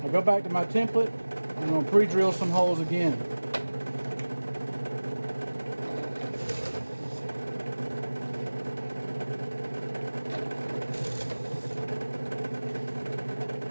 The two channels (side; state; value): both; inverted; correlation -1.00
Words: I'll go back to my template and I'm going to pre-drill some holes again.